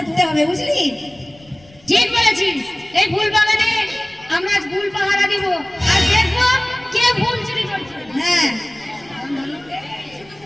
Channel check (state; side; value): noise; left; rumble, 27 dB below the sound